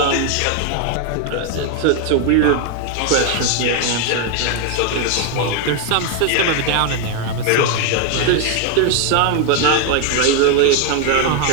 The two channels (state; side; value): different; both; correlation 0.01